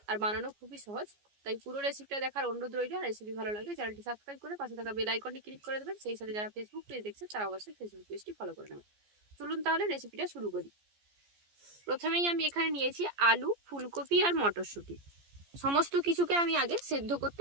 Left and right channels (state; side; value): late; left; 14 ms